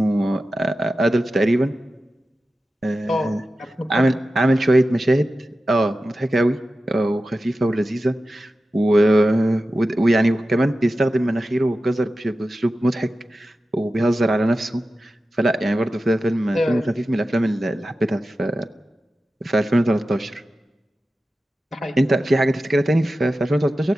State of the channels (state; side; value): normal; both; correlation 0.93